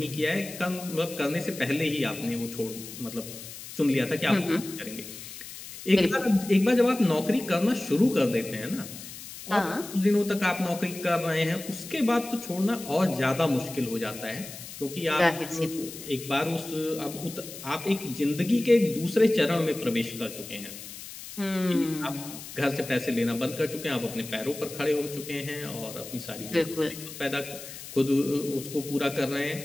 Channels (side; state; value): left; noise; hiss, 12 dB below the sound